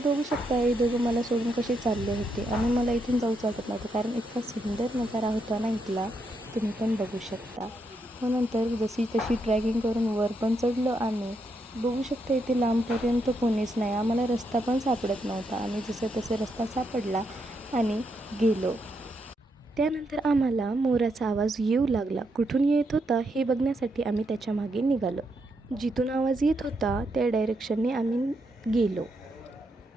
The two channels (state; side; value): normal; both; correlation 0.80